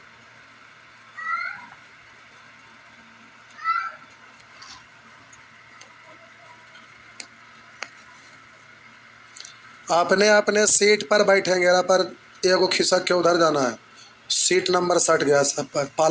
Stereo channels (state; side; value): identical; both; correlation 1.00